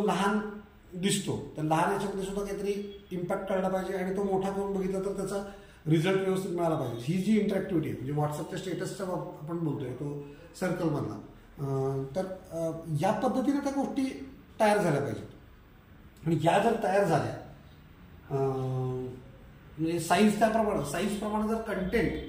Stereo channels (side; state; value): both; identical; correlation 1.00